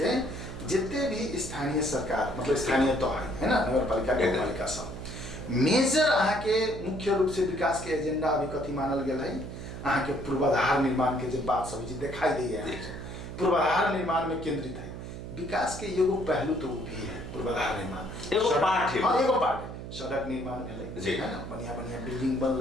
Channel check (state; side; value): noise; right; hum, 9 dB below the sound